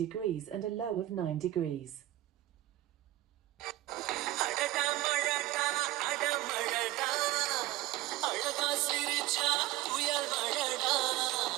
and a low of 9 degrees.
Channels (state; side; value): quieter; left; 16.1 dB